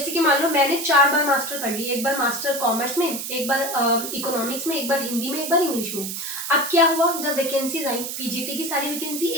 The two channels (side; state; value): right; noise; hiss, 5 dB below the sound